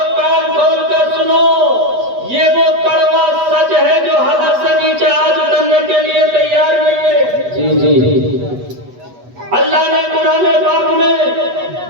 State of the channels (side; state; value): left; late; 8.2 ms